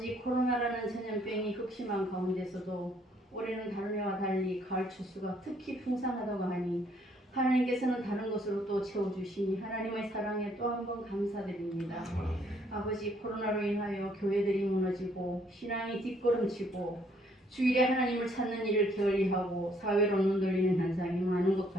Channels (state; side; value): normal; both; correlation 0.66